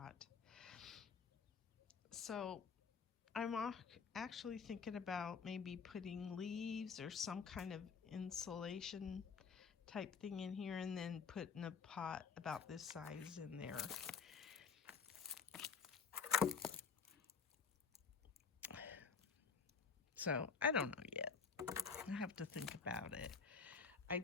So I'm actually thinking about maybe putting leaves or some kind of insulation type thing in here, and then putting a pot about this size in there. So I don't know yet. I have to think about it.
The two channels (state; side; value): quieter; right; 5.7 dB